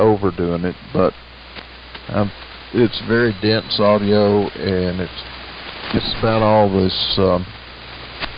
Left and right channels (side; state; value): both; identical; correlation 1.00